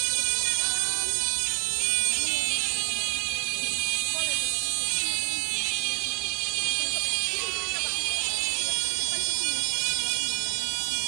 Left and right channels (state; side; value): quieter; left; 33.5 dB